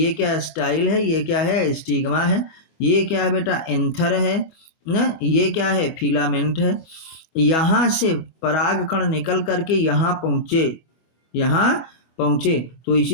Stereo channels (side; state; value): right; late; 25 ms